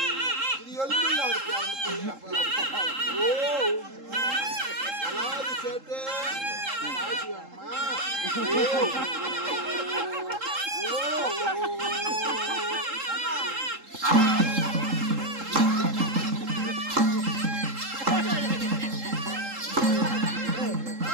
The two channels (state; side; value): late; left; 3.7 ms